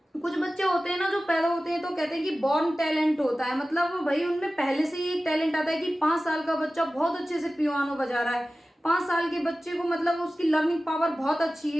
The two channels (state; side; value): normal; both; correlation 0.96